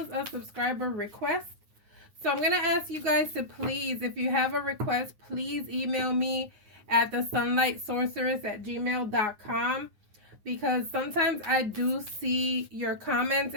a subscriber request. So I'm going to ask you guys to please, if you have a request, please email me at thesunlightsorceress@gmail.com, because sometimes I do see your comments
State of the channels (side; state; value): left; late; 9.5 ms